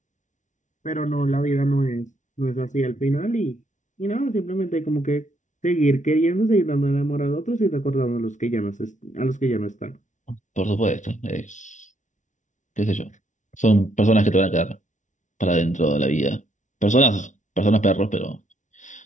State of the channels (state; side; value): late; right; 0.36 ms